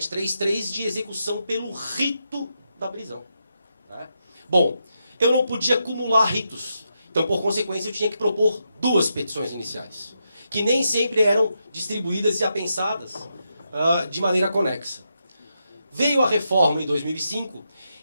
de execução pelo rito da prisão. Né? Bom, eu não podia acumular ritos. Então, por consequência, eu tinha que propor duas petições iniciais, que nem sempre eram distribuídas e apensadas de maneira conexa. Veio a reforma em 2005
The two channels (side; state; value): both; inverted; correlation -0.84